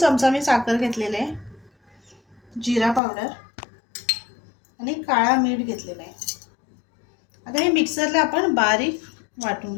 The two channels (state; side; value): drops out; right; at 3.0 s